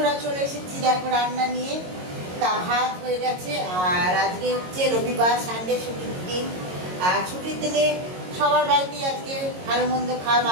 চলে এসেছি দেখো রান্না নিয়ে। তা ভাত হয়ে গেছে, আর আজকে হচ্ছে রবিবার, সানডে ছুটির দিন। আর ছুটির দিনে সবার বাড়িতেই আজকে ভালো মন্দ খাওয়া,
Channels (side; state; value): left; late; 22 ms